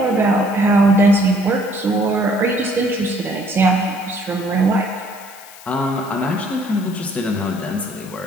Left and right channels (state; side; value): noise; left; hiss, 20 dB below the sound